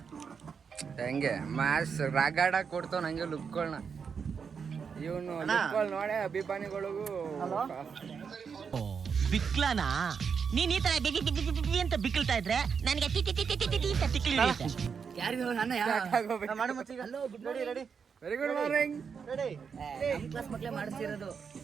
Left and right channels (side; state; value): left; quieter; 6.3 dB